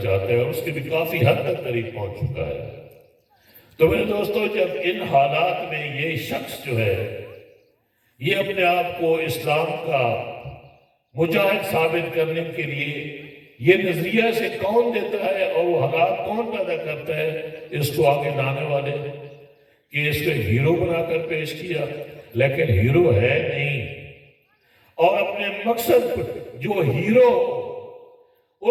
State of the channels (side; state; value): both; identical; correlation 1.00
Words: ہے، اور اس کے بھی کافی حد تک قریب پہنچ چکا ہے۔ تو میرے دوستو، جب ان حالات میں یہ شخص جو ہے، یہ اپنے آپ کو اسلام کا مجاہد ثابت کرنے کے لیے یہ نظریہ سے کون دیتا ہے اور وہ حالات کون پیدا کرتا ہے، اس کو آگے لانے والے کہ اس کو ہیرو بنا کر پیش کیا، لیکن ہیرو ہے نہیں، اور اپنے مقصد جو ہیرو